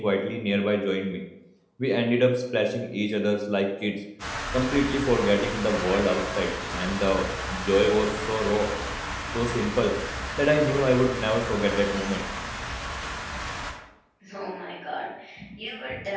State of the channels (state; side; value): identical; both; correlation 1.00